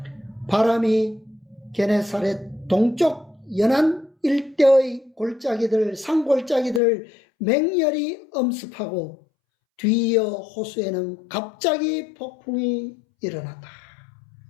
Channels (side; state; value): right; drops out; at 6.8 s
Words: 바람이 게네사렛 동쪽 연안 일대의 산골짜기들을 맹렬히 엄습하고 뒤이어 호수에는 갑자기 폭풍이 일어났다.